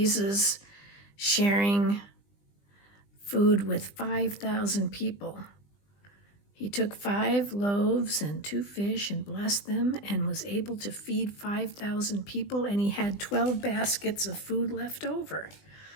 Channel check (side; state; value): right; late; 20 ms